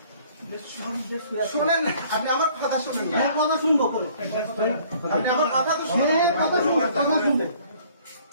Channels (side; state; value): both; inverted; correlation -0.57